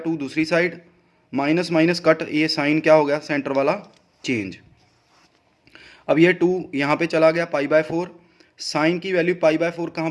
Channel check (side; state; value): both; identical; correlation 1.00